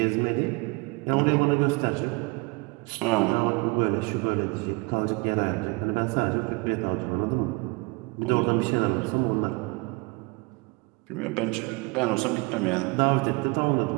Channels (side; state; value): left; quieter; 27.6 dB